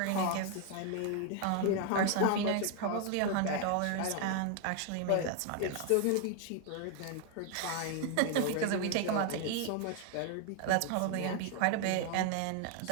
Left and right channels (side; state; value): both; different; correlation 0.01